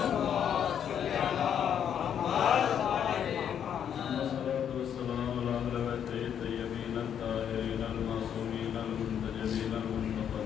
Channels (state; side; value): quieter; right; 8.8 dB